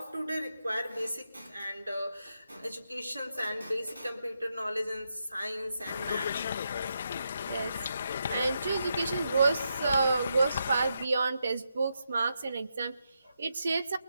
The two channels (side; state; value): both; inverted; correlation -0.83